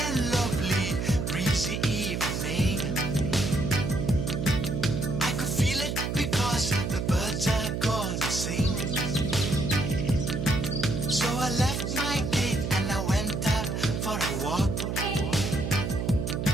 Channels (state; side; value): noise; right; hum, 2 dB below the sound